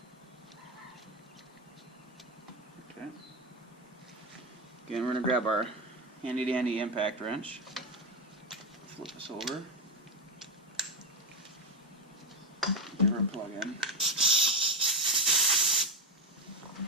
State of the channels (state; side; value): normal; both; correlation 0.08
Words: Okay. Again, we're going to grab our handy dandy impact wrench. Flip this over. Give her a plug in.